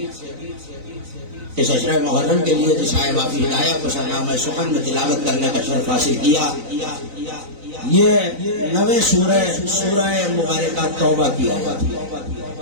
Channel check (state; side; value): late; left; 3.9 ms